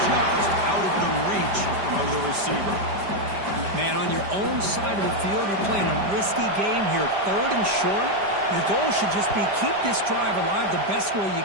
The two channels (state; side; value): late; left; 5.1 ms